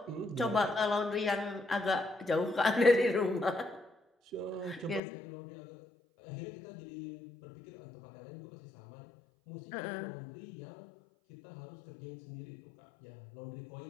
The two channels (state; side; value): drops out; right; at 5.0 s